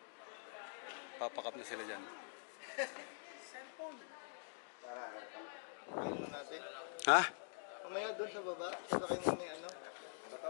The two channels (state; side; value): silent; right; digital silence